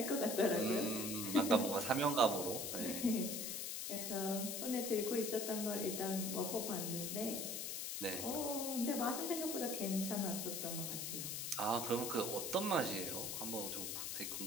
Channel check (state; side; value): noise; left; hiss, 3 dB below the sound